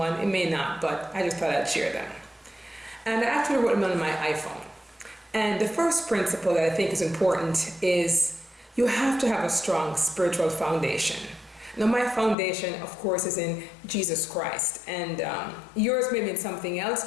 it may not, but I just thought I'd share them. And I actually wrote them on my iPhone. And the first principle that I think is important is you have to have a strong spiritual foundation. Now, my foundation, of course, is in Jesus Christ. And yours may be in something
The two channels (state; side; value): drops out; right; at 12.4 s